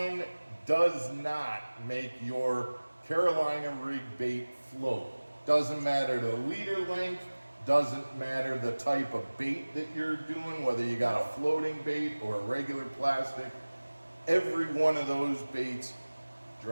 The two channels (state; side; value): inverted; both; correlation -1.00